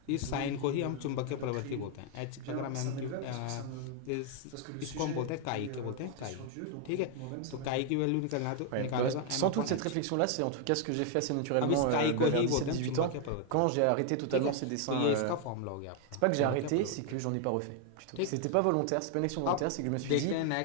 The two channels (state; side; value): different; both; correlation 0.00